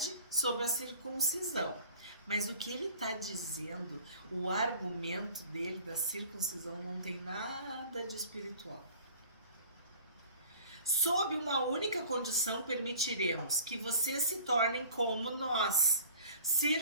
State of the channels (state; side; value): inverted; both; correlation -0.47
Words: sobre a circuncisão. Mas o que ele está dizendo, o argumento dele da circuncisão não tem nada de espiritual. Sob uma única condição permitiremos que vocês se tornem como nós,